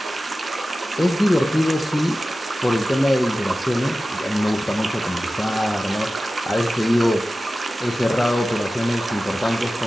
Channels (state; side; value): normal; both; correlation 0.94